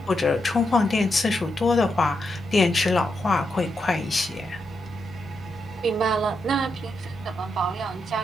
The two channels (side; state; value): both; normal; correlation 0.83